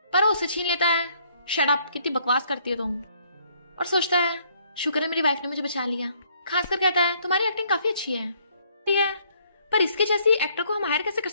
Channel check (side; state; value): both; inverted; correlation -0.66